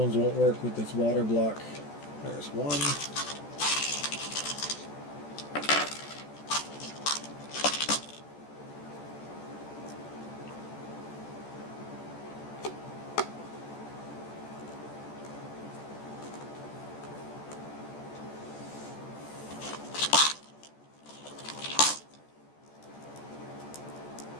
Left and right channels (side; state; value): right; late; 14 ms